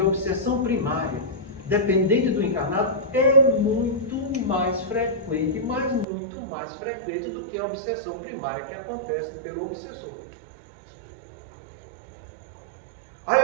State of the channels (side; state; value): left; drops out; at 6.1 s